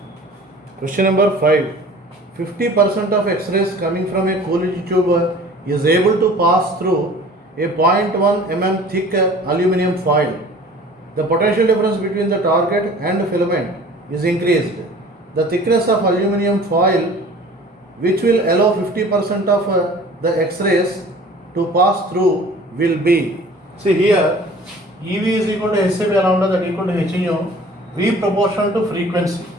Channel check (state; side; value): normal; both; correlation 0.46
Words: Question number 5. 50% of X-rays coming from a Coolidge tube is able to pass through a 0.1 mm thick aluminum foil. The potential difference between the target and filament is increased. The thickness of aluminum foil, which will allow 50% of the X-rays to pass through, will be. See here, EV is equal to Hc by lambda, that equal to h nu, V proportional to frequency,